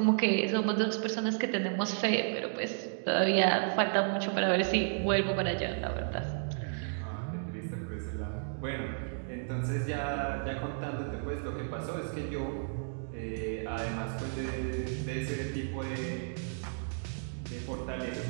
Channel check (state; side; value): silent; left; digital silence